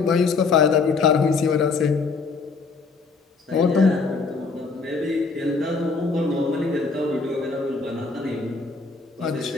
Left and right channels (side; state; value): right; quieter; 4.4 dB